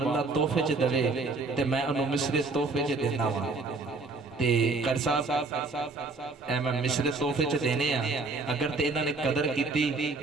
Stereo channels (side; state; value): left; quieter; 3.7 dB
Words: اللہ تحفے چ دے تے میں انہوں مصرے تحفے چ دینا وا تے کر صاحب اے میں مصرے تحفے چ دینے ہیں اگر تے انہاں نے قدر کیتی